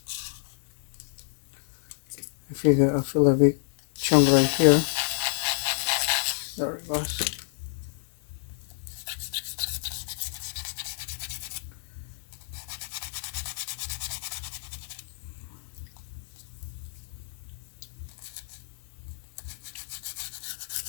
I feel a big chunk right here. There it goes.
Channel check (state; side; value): silent; right; 59 dB below the other